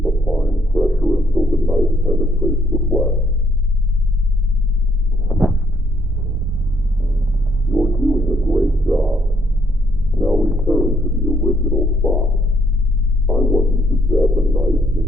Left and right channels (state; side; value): normal; both; correlation 0.69